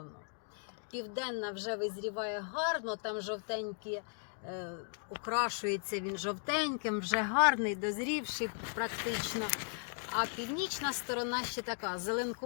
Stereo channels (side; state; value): right; silent; 53 dB below the other